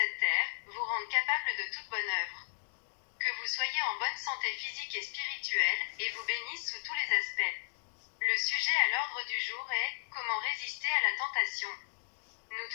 terre, vous rende capable de toute bonne œuvre. Que vous soyez en bonne santé physique et spirituelle, et vous bénisse sous tous les aspects. Le sujet à l'ordre du jour est « Comment résister à la tentation ?» Nous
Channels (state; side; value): silent; right; digital silence